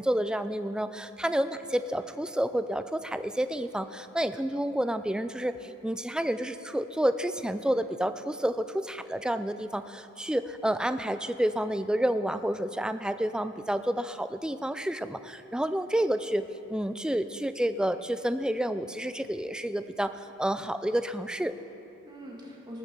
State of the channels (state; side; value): normal; both; correlation 0.90